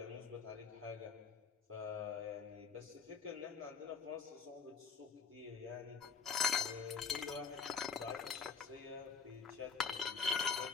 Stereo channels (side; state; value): right; quieter; 5.9 dB